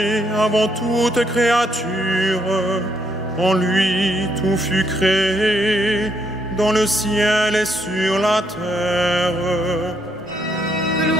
avant toute créature. En lui, tout fut créé, dans le ciel et sur la terre.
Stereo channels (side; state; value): both; normal; correlation 0.74